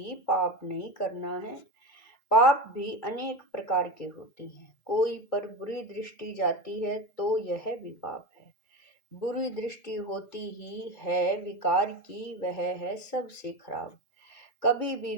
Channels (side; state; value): right; late; 2.2 ms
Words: पाप नहीं करना है। पाप भी अनेक प्रकार के होते हैं। कोई पर बुरी दृष्टि जाती है तो यह भी पाप है। बुरी दृष्टि होती ही है विकार की, वह है सबसे खराब। कभी